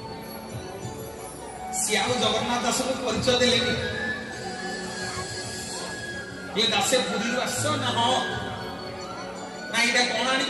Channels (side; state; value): both; identical; correlation 1.00